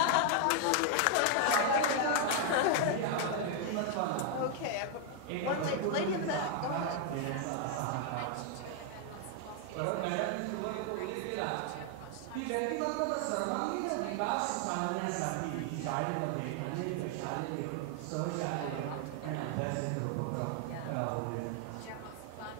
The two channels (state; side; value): different; both; correlation 0.00